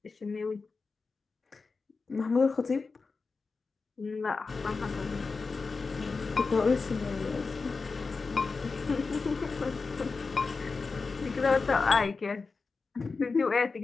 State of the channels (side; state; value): right; quieter; 4.3 dB